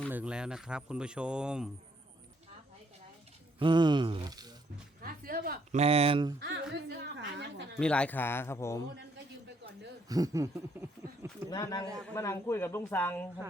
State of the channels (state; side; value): normal; both; correlation 0.70